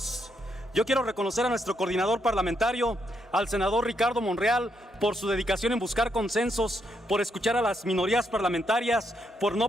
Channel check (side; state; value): both; normal; correlation 0.77